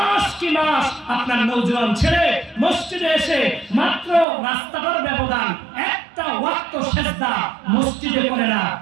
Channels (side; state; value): left; drops out; at 4.2 s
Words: কি মাস আপনার নওজোয়ান ছেলে মসজিদে এসে মাত্র রাস্তাটার ব্যবধান, একটা ওয়াক্ত সেজদা মসজিদে করে না।